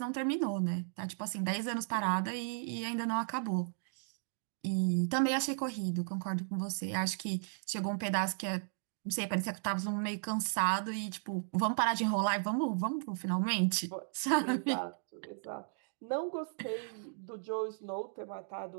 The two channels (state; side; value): silent; left; digital silence